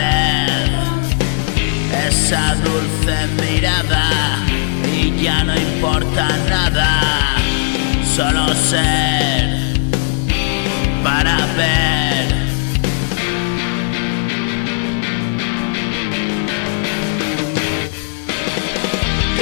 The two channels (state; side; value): silent; right; 68 dB below the other